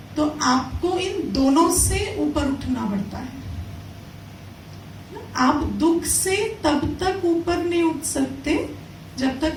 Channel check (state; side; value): identical; both; correlation 1.00